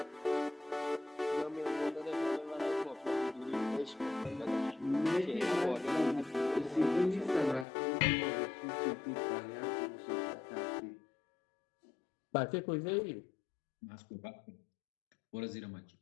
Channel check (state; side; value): drops out; right; at 7.7 s